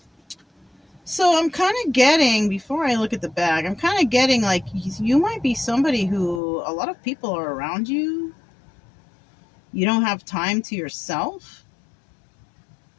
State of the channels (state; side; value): drops out; right; at 6.4 s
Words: So I'm kind of getting, before I look at the bag, I'm kind of getting like you might be somebody who a lot of people are around you. You don't have time to yourself.